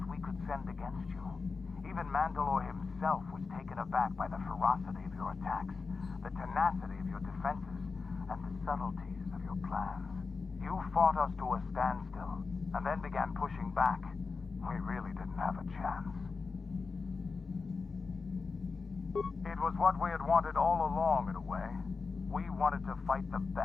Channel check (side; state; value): right; quieter; 4.6 dB